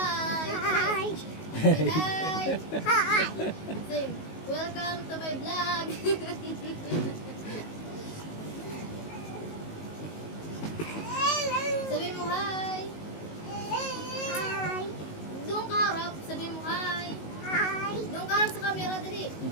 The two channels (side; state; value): right; late; 19 ms